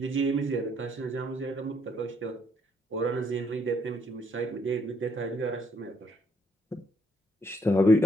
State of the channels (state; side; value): normal; both; correlation 0.71